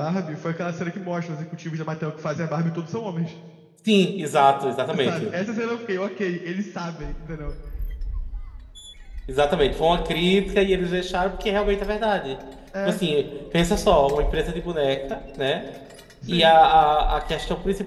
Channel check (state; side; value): identical; both; correlation 1.00